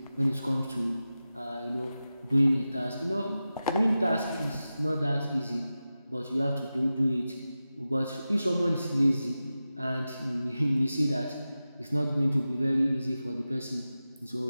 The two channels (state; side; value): inverted; both; correlation -0.93